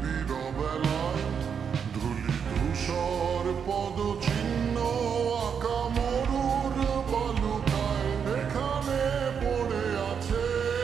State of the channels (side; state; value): left; quieter; 7.0 dB